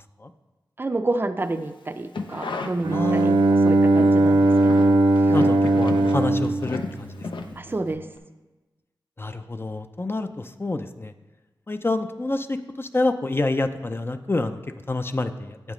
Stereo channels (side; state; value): both; normal; correlation 0.86